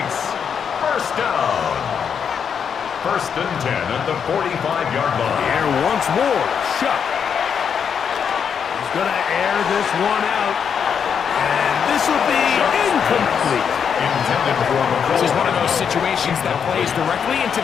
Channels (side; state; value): right; quieter; 7.2 dB